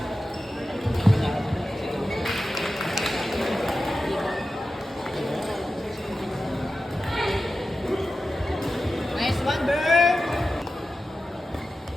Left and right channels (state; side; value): normal; both; correlation 0.93